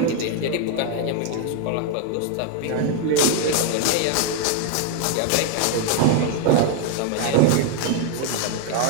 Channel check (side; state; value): both; different; correlation 0.00